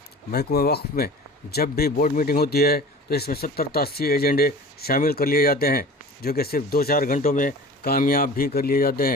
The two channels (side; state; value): both; normal; correlation 0.40